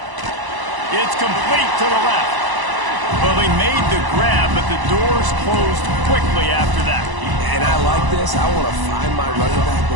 It's complete to the left. Well, they made the grab, but the doors closed quickly after that. And I like this. I want to find my running back,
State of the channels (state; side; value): late; left; 1.0 ms